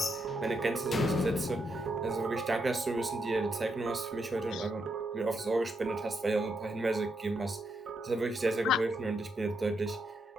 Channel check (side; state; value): both; normal; correlation 0.80